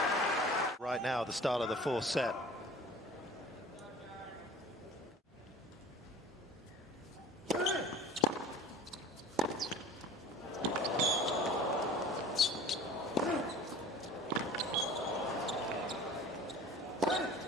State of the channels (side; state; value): both; normal; correlation 0.43